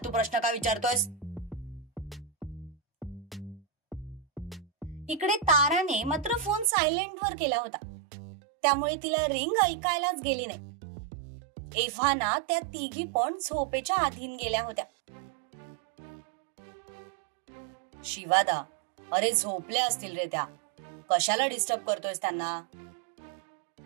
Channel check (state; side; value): drops out; left; at 6.7 s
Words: प्रश्न का विचारतोयस? इकडे ताराने मात्र फोन सायलेंट वर केला होता, त्यामुळे तिला रिंग ऐकायलाच गेली नाही. एव्हाना त्या तिघी पण झोपेच्या अधीन गेल्या होत्या. शिवादा, अरे झोपल्या असतील रे त्या, कशाला डिस्टर्ब करतोयस त्यांना?